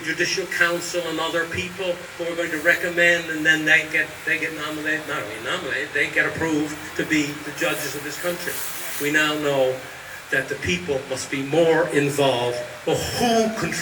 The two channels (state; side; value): identical; both; correlation 1.00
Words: Judicial Council and other people who are going to recommend, and then they get nominated, not only nominated, they get approved to be the judges of this country. We now know that the people must be more involved. Well, who